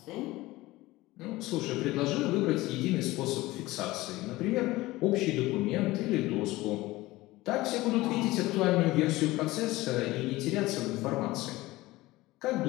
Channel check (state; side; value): quieter; right; 18.9 dB